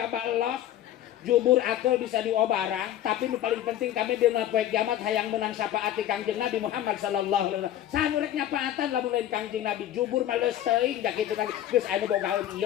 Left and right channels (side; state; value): right; quieter; 12.0 dB